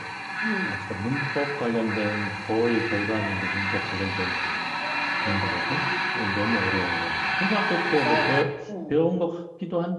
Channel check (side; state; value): both; identical; correlation 1.00